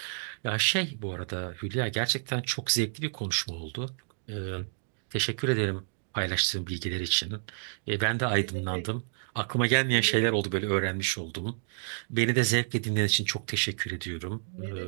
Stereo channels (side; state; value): left; silent; digital silence